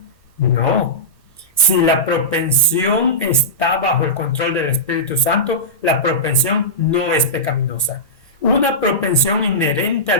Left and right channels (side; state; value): both; normal; correlation -0.17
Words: No. Si la propensión está bajo el control del Espíritu Santo, la propensión no es pecaminosa. Una propensión inherente